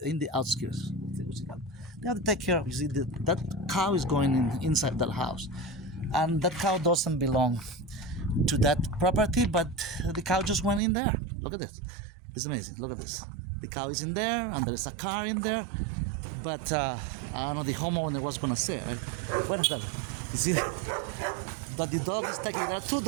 in the outskirts of Tegucigalpa, they have to take care of. You see, that cow is going inside that house, and that cow doesn't belong to that property, but the cow just went in there. Look at this. It's amazing. Look at this. The cow is in there, and there's a car in there. But I don't know, the homeowner was gonna say, right? You see, but the dog is taking. There are two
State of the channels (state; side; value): drops out; left; at 10.8 s